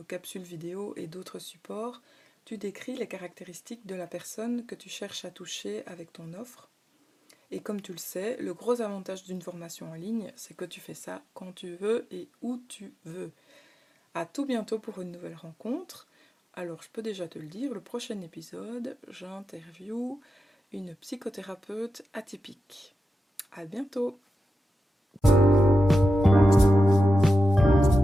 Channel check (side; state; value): both; normal; correlation 0.90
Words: capsules vidéo et d'autres supports, tu décris les caractéristiques de la personne que tu cherches à toucher avec ton offre. Et comme tu le sais, le gros avantage d'une formation en ligne, c'est que tu fais ça quand tu veux et où tu veux. À tout bientôt pour une nouvelle rencontre. Alors, je peux déjà te le dire, le prochain épisode, j'interviewe une psychothérapeute atypique. À bientôt!